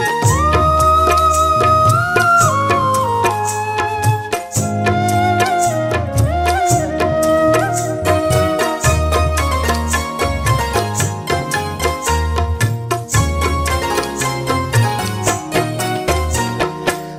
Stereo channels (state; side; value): identical; both; correlation 1.00